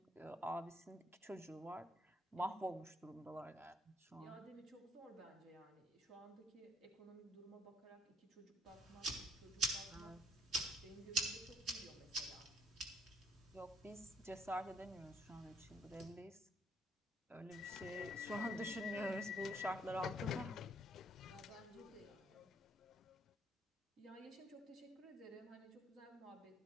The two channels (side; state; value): both; normal; correlation 0.64